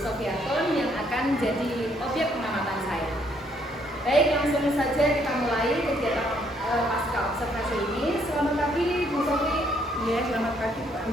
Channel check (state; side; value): normal; both; correlation 0.69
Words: yang akan jadi objek pengamatan saya. Baik, langsung saja kita mulai kegiatan pasca observasi ini. Selamat pagi, Bu Sofi. Ya, selamat pagi Pak